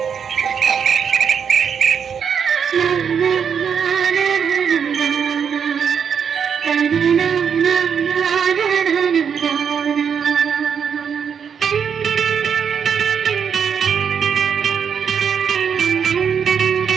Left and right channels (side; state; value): left; quieter; 7.2 dB